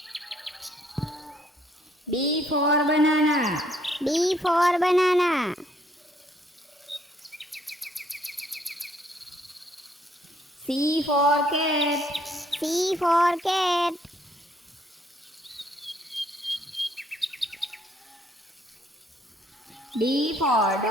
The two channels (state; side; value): normal; both; correlation 0.66